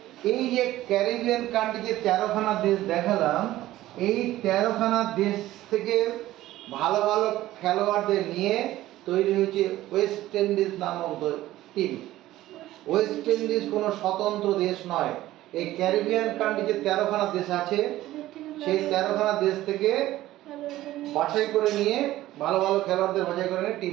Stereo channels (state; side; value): quieter; left; 15.3 dB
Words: এই যে ক্যারিবিয়ান কান্ট্রি যে 13খানা দেশ দেখালাম, এই 13খানা দেশ থেকে ভালো ভালো খেলোয়াড়দের নিয়ে তৈরি হয়েছে ওয়েস্ট ইন্ডিজ নামক টিম। ওয়েস্ট ইন্ডিজ কোনো স্বতন্ত্র দেশ নয়, এই ক্যারিবিয়ান কান্ট্রি যে 13খানা দেশ আছে সেই 13খানা দেশ থেকে বাছাই করে নিয়ে ভালো ভালো খেলোয়াড়দের বাছাই করে নিয়ে